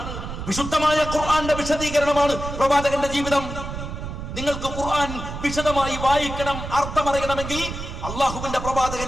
വിശുദ്ധമായ ഖുർആന്റെ വിശദീകരണമാണ് പ്രവാചകന്റെ ജീവിതം. നിങ്ങൾക്ക് ഖുർആൻ വിശദമായി വായിക്കണം, അർത്ഥമറിയണമെങ്കിൽ അള്ളാഹുവിന്റെ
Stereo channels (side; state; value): right; noise; rumble, 7 dB below the sound